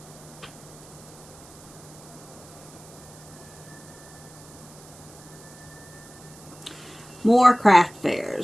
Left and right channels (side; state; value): right; noise; hiss, 21 dB below the sound